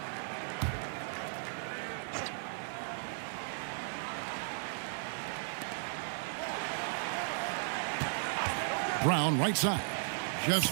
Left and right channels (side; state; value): left; silent; 54 dB below the other